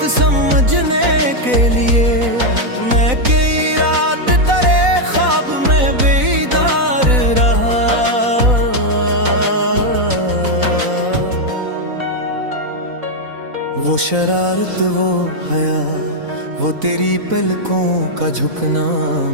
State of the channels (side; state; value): left; late; 4.0 ms